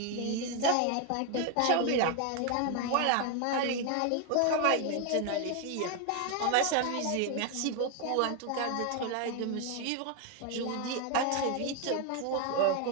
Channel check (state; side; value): different; both; correlation 0.01